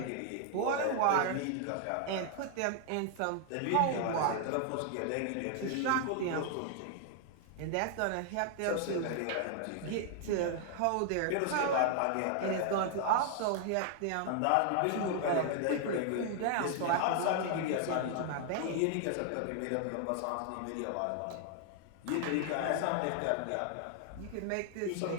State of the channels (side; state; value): both; different; correlation 0.00